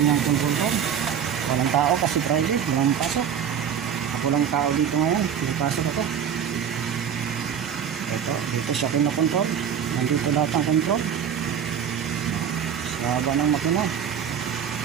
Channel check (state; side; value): quieter; left; 8.3 dB